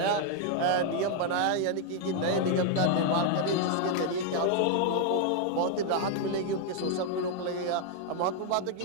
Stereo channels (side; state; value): both; different; correlation 0.00